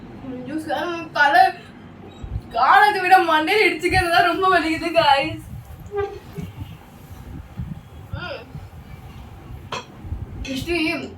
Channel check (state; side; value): identical; both; correlation 1.00